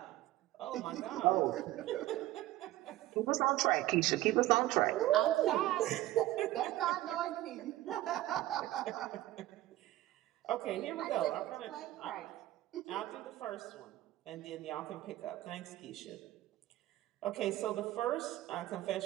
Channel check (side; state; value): left; quieter; 15.8 dB